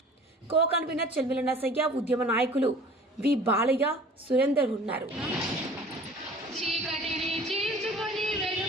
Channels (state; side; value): normal; both; correlation 0.46